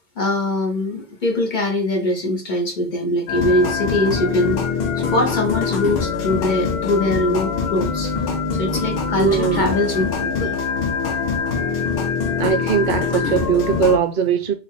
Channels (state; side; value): late; right; 2.2 ms